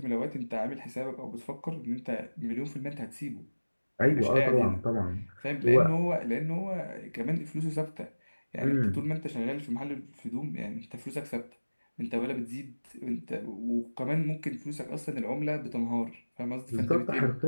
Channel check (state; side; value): inverted; both; correlation -1.00